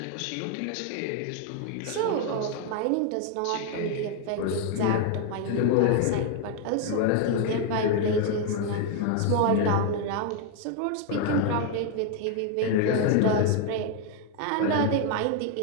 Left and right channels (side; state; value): both; different; correlation 0.01